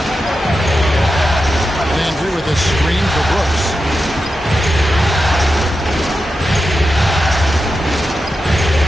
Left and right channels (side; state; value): both; normal; correlation 0.90